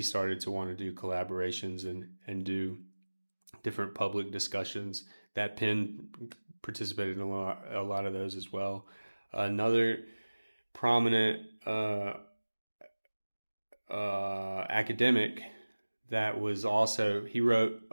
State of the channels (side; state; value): both; inverted; correlation -1.00